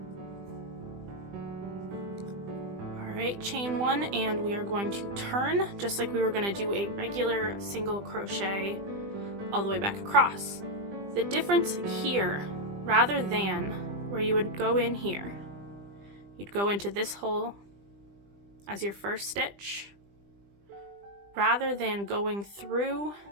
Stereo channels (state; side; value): late; left; 20 ms